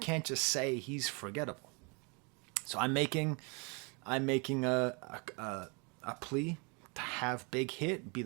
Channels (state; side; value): quieter; left; 32.5 dB